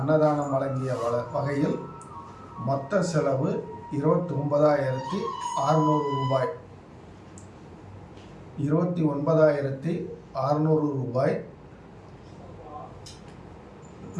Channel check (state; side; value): identical; both; correlation 1.00